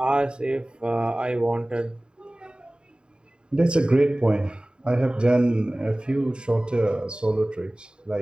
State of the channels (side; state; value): left; late; 0.050 ms